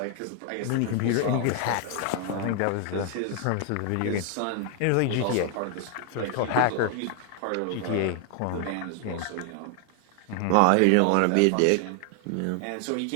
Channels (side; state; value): both; different; correlation 0.00